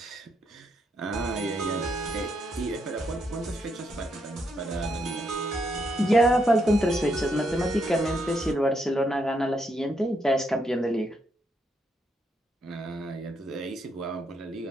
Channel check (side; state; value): both; normal; correlation 0.78